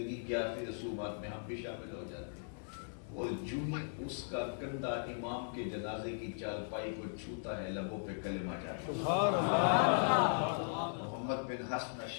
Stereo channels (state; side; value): silent; right; digital silence